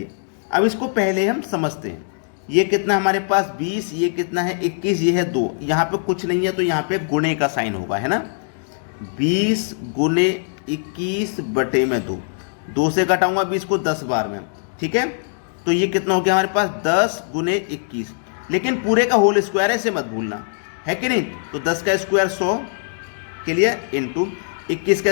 अब इसको पहले हम समझते हैं। ये कितना हमारे पास 20, ये कितना है 21, ये है 2, यहाँ पे कुछ नहीं है तो यहाँ पे गुणे का साइन होगा, है ना। 20 गुने 21 बटे में 2, 2 से घटाऊंगा 20 को 10 बार में, ठीक है। तो ये कितना हो गया हमारे पास 10 गुने 21, लेकिन पूरे का होल स्क्वायर है, इसे मत भूलना, है कि नहीं। तो 10 का स्क्वायर 100 के लिए इंटू 21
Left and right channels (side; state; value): right; silent; digital silence